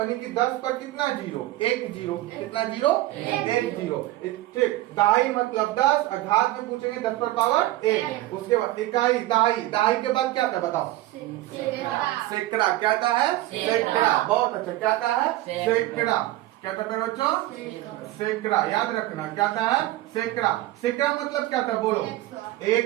कि 10 पर कितना जीरो? 1 जीरो। कितना जीरो? 1 जीरो। ठीक, दहाई मतलब 10 और घात में पूछेंगे 10 पर पावर 1। उसके बाद इकाई दहाई। दहाई के बाद क्या था बताओ? सैकड़ा। क्या था है? सैकड़ा। बहुत अच्छा, क्या था है? सैकड़ा। क्या था बच्चों? सैकड़ा। याद रखना क्या था है? सैकड़ा। सैकड़ा मतलब क्या था? बोलो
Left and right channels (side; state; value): left; quieter; 16.3 dB